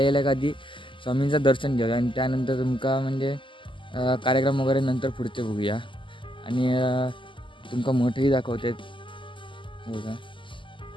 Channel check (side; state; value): right; late; 0.25 ms